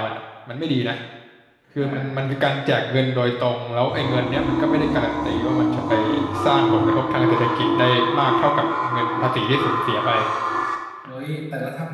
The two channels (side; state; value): both; identical; correlation 1.00